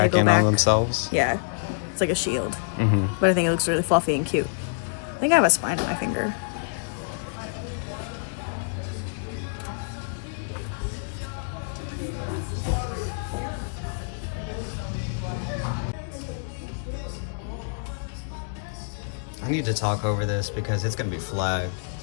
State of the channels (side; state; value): right; silent; digital silence